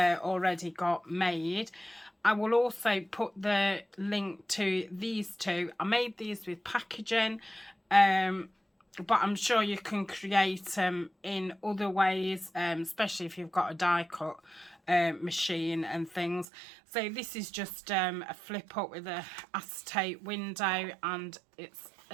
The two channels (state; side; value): drops out; left; at 16.4 s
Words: got made. I will also put the link to these two. I made these with packaging, but I'm sure you can create them in other ways, especially if you've got a die cut machine and things. So this is just a flip up with a acetate window, and it's